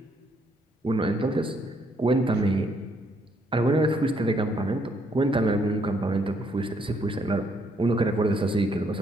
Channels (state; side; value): normal; both; correlation 0.71